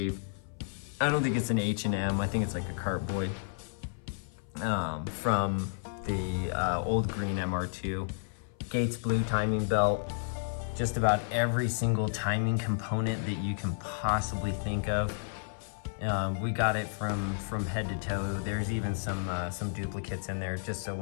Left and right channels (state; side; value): silent; right; 57 dB below the other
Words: I don't think it's an H&M, I think it's like a Cartboy. From the old green MR2. Gates blue timing belt. Just about every single timing component that you can possibly think of. We got it from head to toe. There's even some duplicates in there, just so